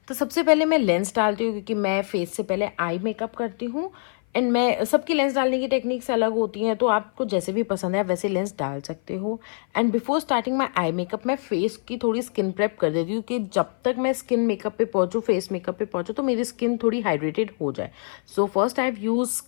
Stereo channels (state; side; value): silent; right; 56 dB below the other